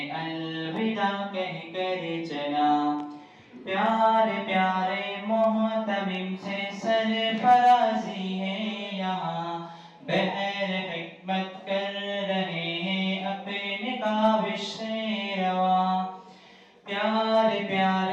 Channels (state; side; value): identical; both; correlation 1.00